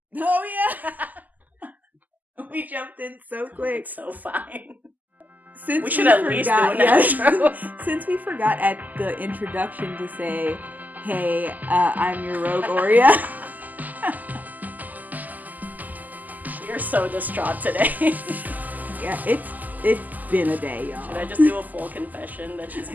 Oh yeah. We jumped in so quick. It's so fine. Since we should at least do an intro. Since we forgot at the introduction to say, "Hey, I'm your rogue Aurea." You're so distraught today. Yeah, it's been a day, y'all. Should I just do a full confession that she's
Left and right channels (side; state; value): left; late; 0.082 ms